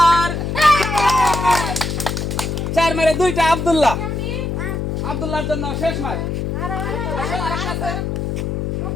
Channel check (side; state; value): left; noise; hum, 2 dB below the sound